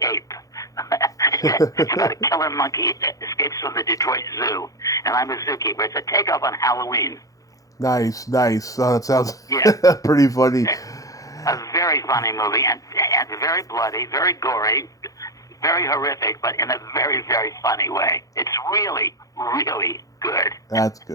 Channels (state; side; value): late; right; 0.17 ms